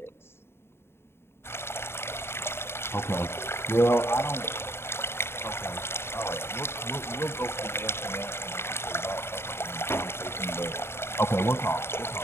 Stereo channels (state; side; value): late; right; 0.12 ms